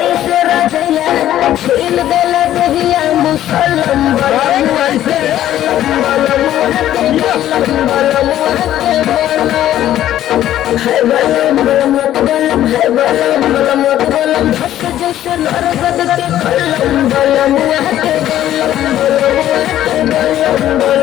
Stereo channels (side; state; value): right; quieter; 12.4 dB